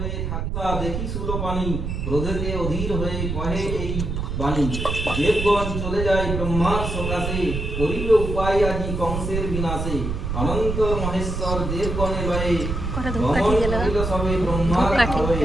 থাকা দেখি সুলো পানি, ক্রোধেতে অধীর হয়ে কহে এই বাণী। দেবগণ চলে যায় ব্রহ্মার সকাশে, করিল উপায় আজি কংসের বিনাশে। অনন্ত মহেশ্বর দেবগণে লয়ে, কটা ধূপ গমন কাঠিয়ে গেল না? করিল সবে ব্রহ্মার ধূপ কাঠি।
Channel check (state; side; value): noise; right; rumble, 3 dB below the sound